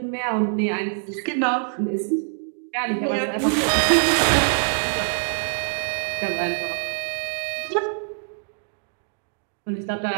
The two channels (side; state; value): left; silent; digital silence